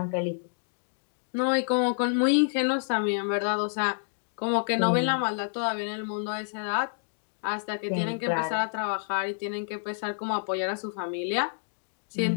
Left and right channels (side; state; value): right; silent; digital silence